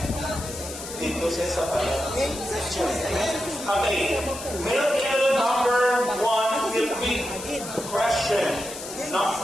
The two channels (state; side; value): noise; left; hiss, 10 dB below the sound